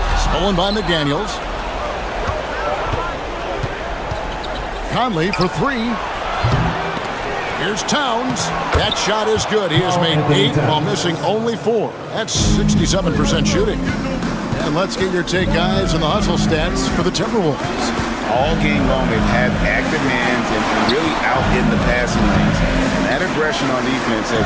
Stolen by McDaniels. Conley for 3. Here's Towns. That shot is good. He has made 8 while missing only 4. That's 67% shooting. And let's get your take, guys, on the hustle stats for the Timberwolves. All game long, they've had active hands and really out in the passing lanes. And that aggression on defense has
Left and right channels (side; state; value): both; identical; correlation 1.00